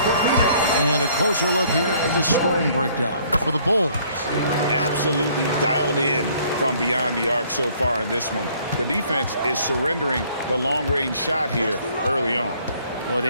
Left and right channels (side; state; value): both; inverted; correlation -0.60